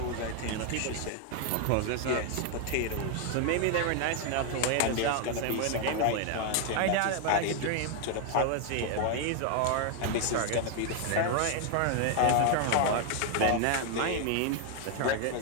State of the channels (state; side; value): different; both; correlation 0.00